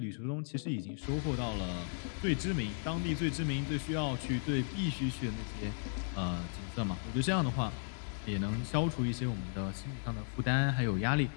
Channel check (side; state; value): right; silent; digital silence